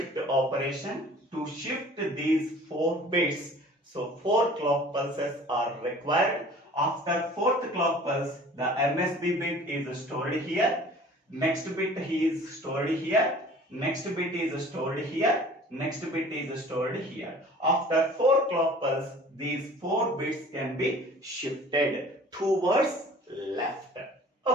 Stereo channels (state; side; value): normal; both; correlation 0.47